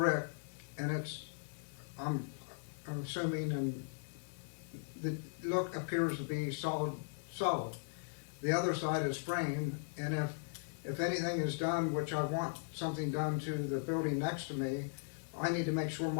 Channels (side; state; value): right; silent; digital silence